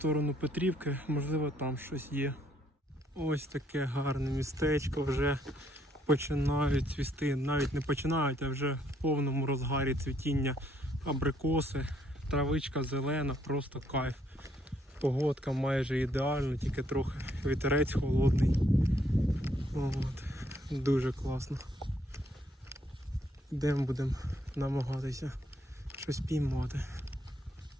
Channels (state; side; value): normal; both; correlation 0.69